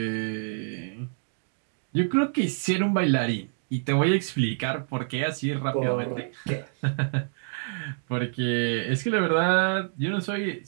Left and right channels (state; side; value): silent; left; digital silence